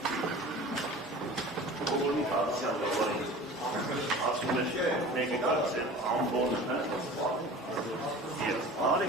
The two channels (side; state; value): both; normal; correlation 0.40